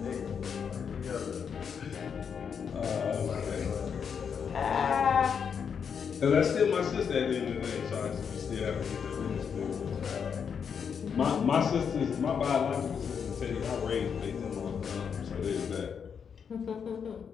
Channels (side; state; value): right; quieter; 6.9 dB